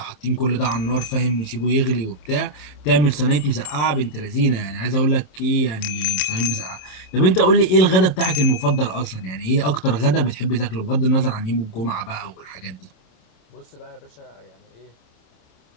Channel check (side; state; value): right; late; 27 ms